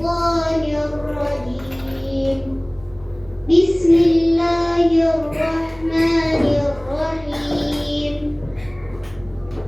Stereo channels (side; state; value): right; noise; hum, 23 dB below the sound